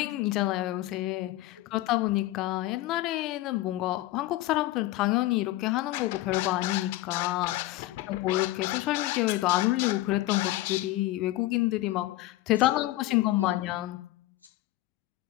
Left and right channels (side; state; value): right; quieter; 16.9 dB